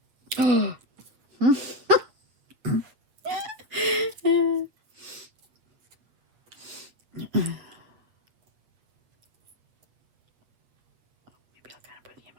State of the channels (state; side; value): late; left; 8.6 ms